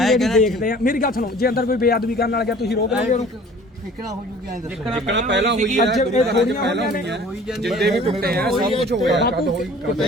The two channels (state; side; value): normal; both; correlation 0.49